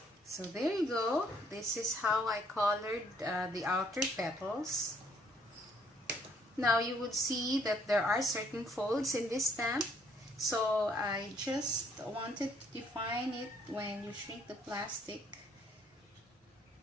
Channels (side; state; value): both; normal; correlation 0.66